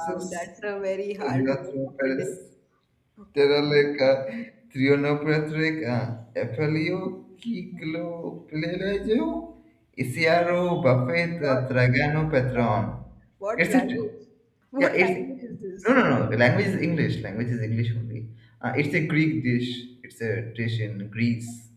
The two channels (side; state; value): both; identical; correlation 1.00